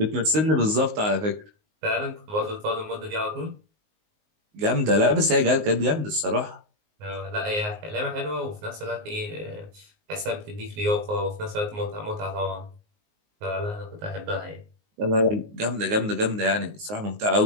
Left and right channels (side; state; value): left; late; 19 ms